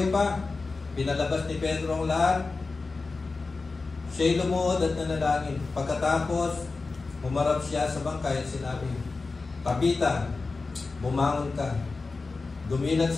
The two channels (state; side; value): quieter; right; 3.9 dB